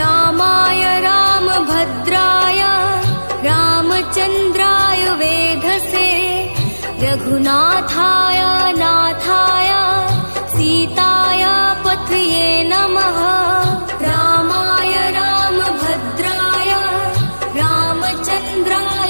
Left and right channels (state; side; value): inverted; both; correlation -1.00